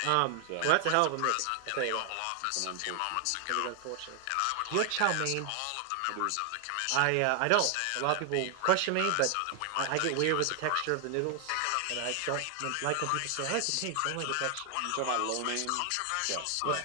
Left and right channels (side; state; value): both; different; correlation 0.00